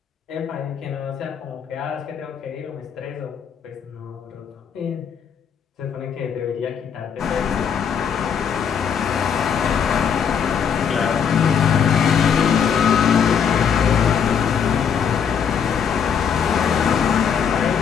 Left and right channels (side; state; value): right; quieter; 7.3 dB